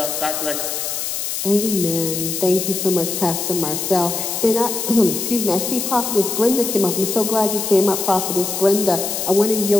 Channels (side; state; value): left; noise; hiss, 3 dB below the sound